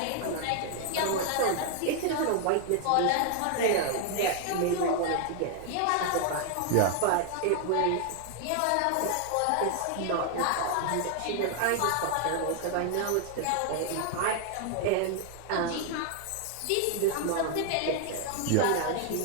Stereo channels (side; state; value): both; different; correlation 0.00